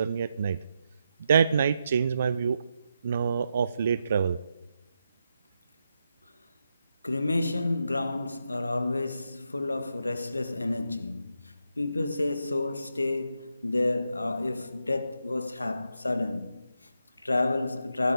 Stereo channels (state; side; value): inverted; both; correlation -0.84